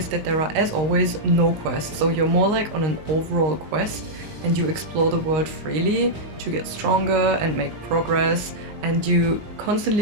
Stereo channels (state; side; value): late; left; 19 ms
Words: that there are, as always, no quests, so you're more like on an overall quest and you explore the world freely to get stronger and make progress, and you